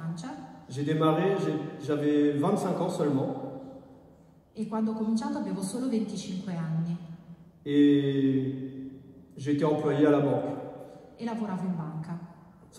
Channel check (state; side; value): identical; both; correlation 1.00